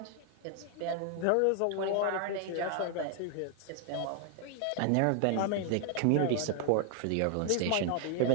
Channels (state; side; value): different; both; correlation 0.00